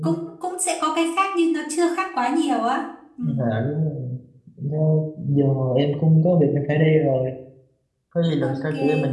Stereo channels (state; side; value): identical; both; correlation 1.00